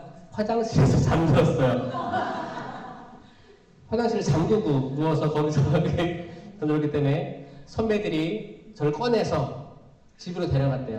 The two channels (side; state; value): both; identical; correlation 1.00